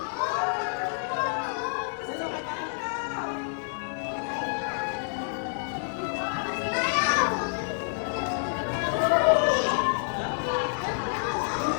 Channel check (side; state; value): right; silent; digital silence